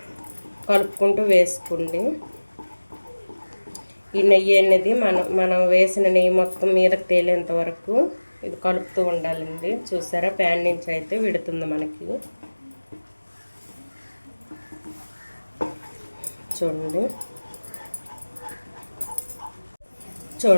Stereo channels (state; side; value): inverted; both; correlation -1.00